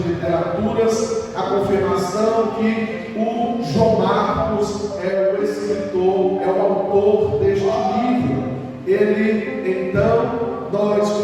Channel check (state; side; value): identical; both; correlation 1.00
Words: literaturas, a confirmação que o João Marcos é o escritor, é o autor deste livro. Ele, então, nós